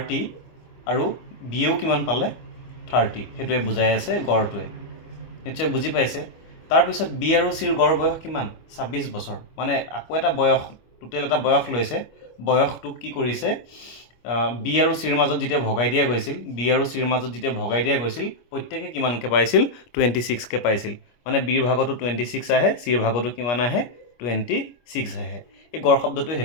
আৰু বিয়েও কিমান পালে 30, সেইটোৱে বুজাই আছে গড়টোৱে। নিশ্চয় বুজি পাইছে। তাৰপিছত বি আৰু চিৰ গড় বয়স কিমান 26 বছৰ, মানে আকৌ এটা বয়স টোটেল এটা বয়স লৈছে। বয়সটোক কি কৰিছে, বি আৰু চিৰ মাজত যেতিয়া ভগাই দিয়া গৈছিল প্ৰত্যেকে কিমানকৈ পাইছিল 26কৈ পাইছিল। মানে বিৰ ভাগতো 26 আহে, চিৰ ভাগতো কিমান আহে 26 আহে। এই গড় শব্দটোৱে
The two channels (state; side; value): late; right; 25 ms